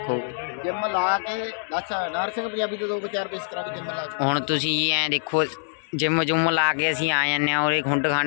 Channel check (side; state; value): right; silent; 62 dB below the other